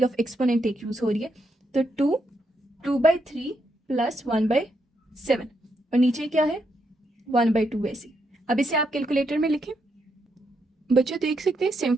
ऑफ एक्सपोनेंट एक यूज हो रही है। तो 2/3 प्लस 1/7 और नीचे क्या है, 1/2 वैसे। अब इसे आप कैलकुलेटर में लिखें। बच्चे देख सकते हैं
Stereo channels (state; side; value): normal; both; correlation 0.79